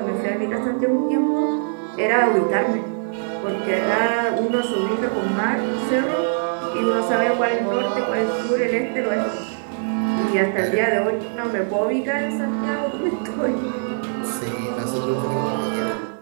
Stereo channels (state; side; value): silent; left; digital silence